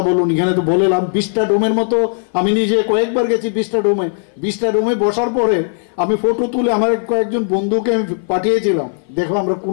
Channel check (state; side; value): silent; right; 56 dB below the other